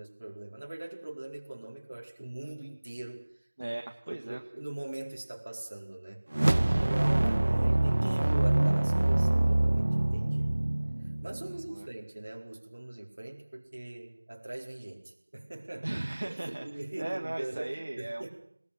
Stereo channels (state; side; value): inverted; both; correlation -1.00